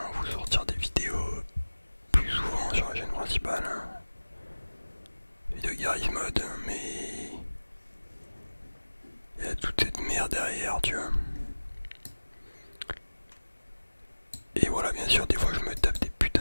vous sortir des vidéos plus souvent sur la chaîne principale. Vidéo Garry's Mod, mais il y a toute cette merde derrière, tu vois. Et voilà, bien sûr, des fois je me tape des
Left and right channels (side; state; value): both; inverted; correlation -1.00